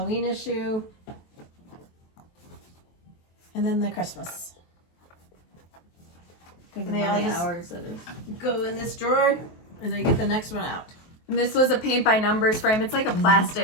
issue. And then the Christmas. Think And of they how all many just hours it is. go in this drawer, and I get the next one out. And this was a paint by numbers frame. It's like a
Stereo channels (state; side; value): late; right; 23 ms